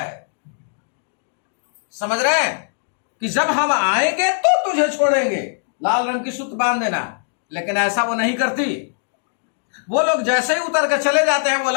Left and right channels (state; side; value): silent; right; digital silence